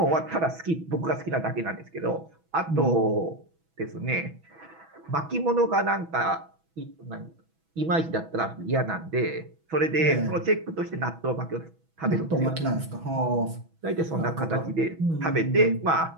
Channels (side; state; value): left; late; 6.1 ms